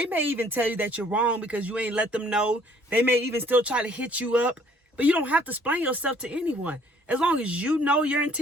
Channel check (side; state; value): both; normal; correlation 0.60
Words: may even tell you that you're wrong because you ain't let them know. They may even still try to hit you up. But you don't have to explain yourself to anyone. As long as you know your